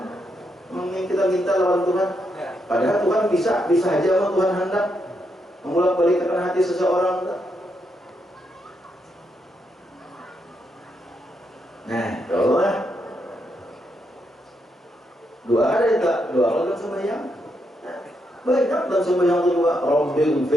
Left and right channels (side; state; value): both; normal; correlation 0.80